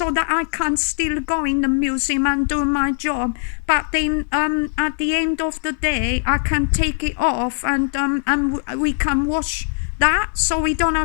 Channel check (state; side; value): silent; right; 65 dB below the other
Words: can still go in the museum and do my job, but then at the end of the day I can take it off and we can wash that, so we don't